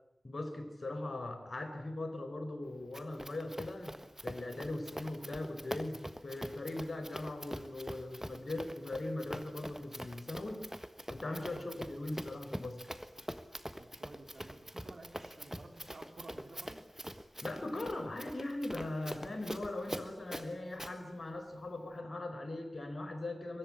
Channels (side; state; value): both; normal; correlation 0.96